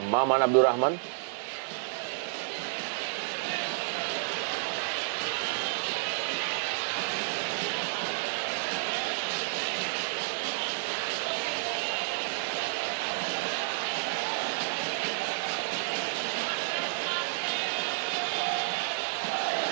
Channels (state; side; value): silent; left; 57 dB below the other